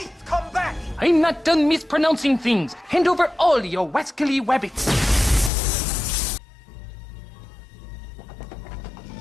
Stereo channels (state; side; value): drops out; right; at 5.5 s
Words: Come back! I'm not done mispronouncing things. Hand over all your wascally wabbits.